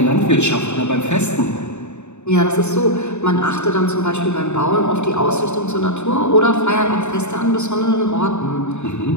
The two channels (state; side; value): late; right; 0.82 ms